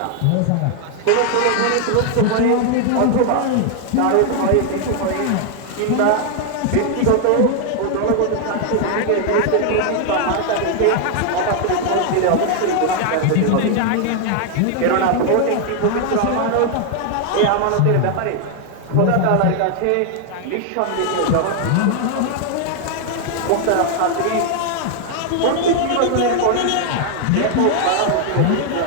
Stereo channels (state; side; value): different; both; correlation 0.00